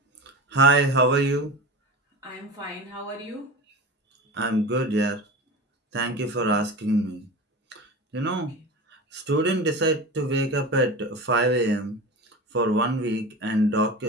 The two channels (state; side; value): normal; both; correlation 0.29